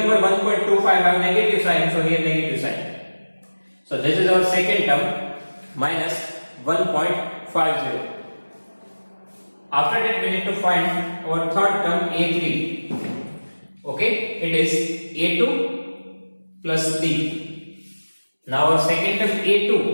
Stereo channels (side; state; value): both; inverted; correlation -1.00